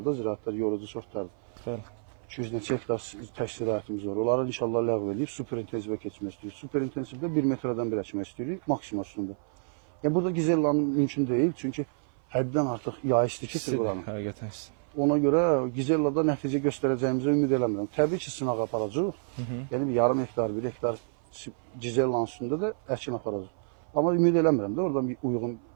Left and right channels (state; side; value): silent; left; 56 dB below the other